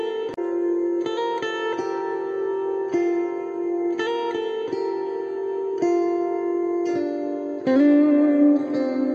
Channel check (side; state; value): both; identical; correlation 1.00